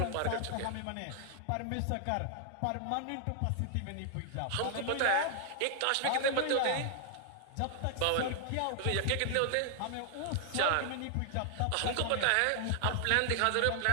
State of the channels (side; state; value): both; different; correlation 0.00